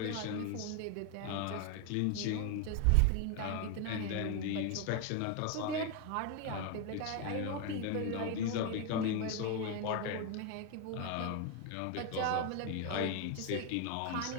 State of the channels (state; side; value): different; both; correlation 0.01